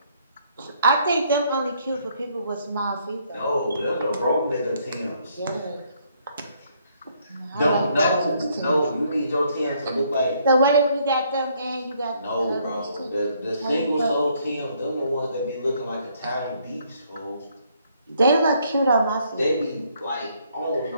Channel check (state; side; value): inverted; both; correlation -0.68